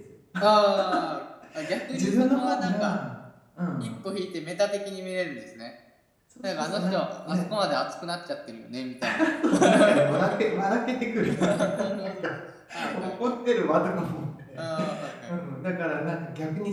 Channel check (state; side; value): identical; both; correlation 1.00